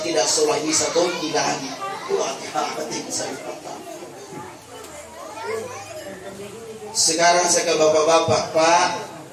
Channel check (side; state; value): both; identical; correlation 1.00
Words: tidak sholat isya tonti lagi. Sekarang saya ke bapak-bapak,